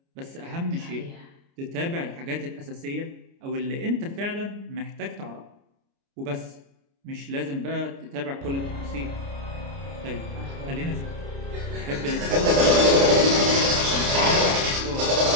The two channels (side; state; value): left; late; 29 ms